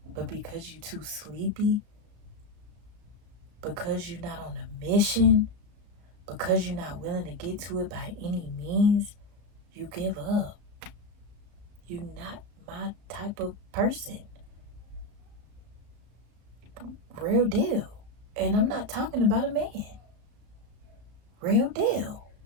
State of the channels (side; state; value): left; late; 33 ms